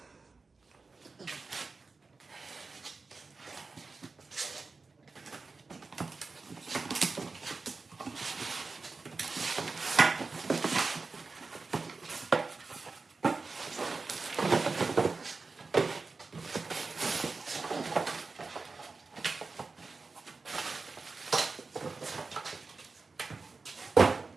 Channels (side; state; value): left; quieter; 4.1 dB